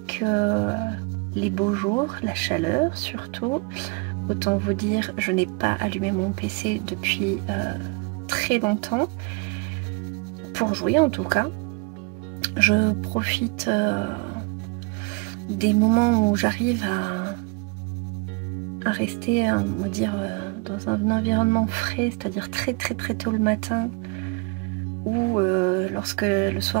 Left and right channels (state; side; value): quieter; left; 30.5 dB